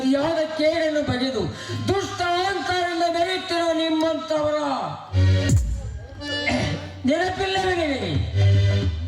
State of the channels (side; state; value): both; identical; correlation 1.00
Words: ಕೇಡನ್ನು ಬಗೆದು ದುಷ್ಟ ಅಹಂಕಾರದಿಂದ ಮೆರೆಯುತ್ತಿರುವ ನಿಮ್ಮಂತವರ ನೆನಪಿಲ್ಲವೇ ನಿನಗೆ?